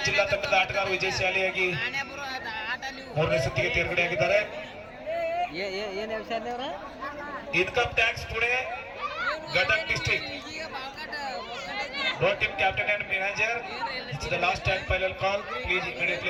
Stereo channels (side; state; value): both; identical; correlation 1.00